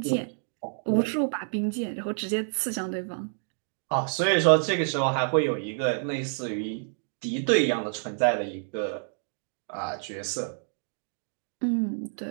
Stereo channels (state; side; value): silent; left; digital silence